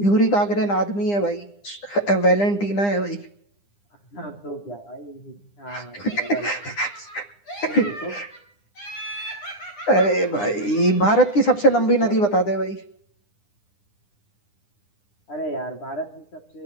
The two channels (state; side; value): late; right; 9.9 ms